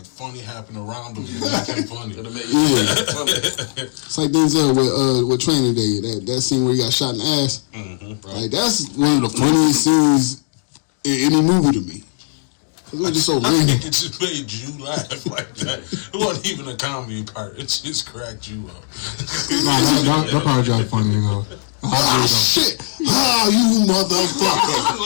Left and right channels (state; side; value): silent; right; digital silence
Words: funny happened around him. Make him funny. It's like Denzel with Training Day. That scene where he got shot in the ass. Mm-hmm, right. Like that's one of the funniest scenes in any movie to me. It was just so I random. think it just made you laugh like that. It wasn't even a comedy part. It just cracked you up. No, that part was funny, you know. Shit! Ah, you motherfucker!